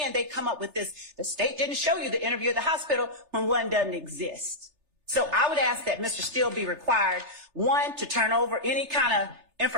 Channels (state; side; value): late; left; 3.3 ms